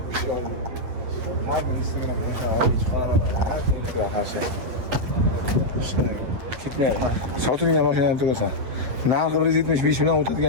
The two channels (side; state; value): left; late; 8.5 ms